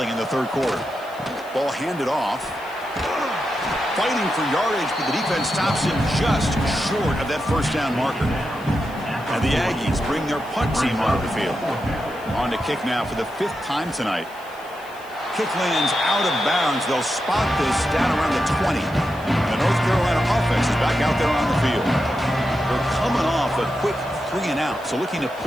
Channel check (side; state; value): left; noise; hiss, 24 dB below the sound